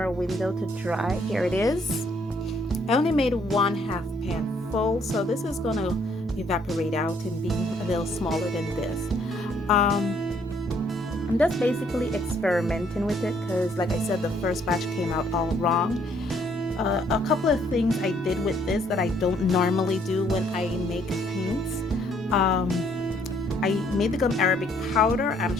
a window to dry. Here it is. I only made 1/2 pan full, so this is gonna evaporate out and be a little smaller than this. I'm just basically experimenting with it because, like I said, the first batch came out all wrong. A couple of things I did with this that I don't normally do when I make paints. I made the gum arabic powder. I'm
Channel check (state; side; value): normal; both; correlation 0.66